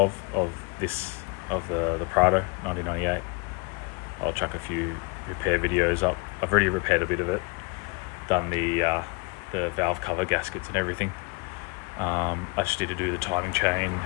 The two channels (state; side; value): quieter; right; 29.9 dB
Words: the Prado 1998. I'll chuck a few repair videos up. I've already repaired a bit of it, done the valve cover gaskets and everything. I just need to do the timing chain